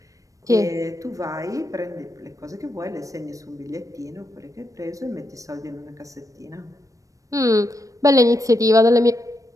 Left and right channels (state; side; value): late; left; 0.16 ms